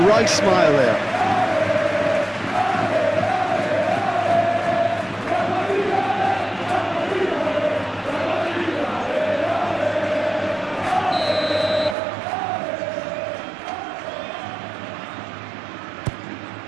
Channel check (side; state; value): left; drops out; at 12.0 s